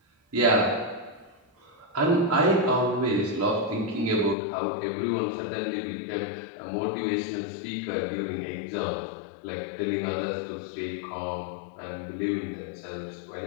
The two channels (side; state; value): right; drops out; at 4.4 s